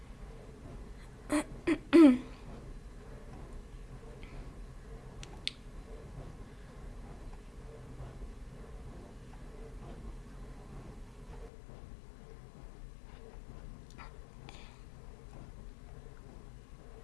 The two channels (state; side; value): drops out; right; at 11.5 s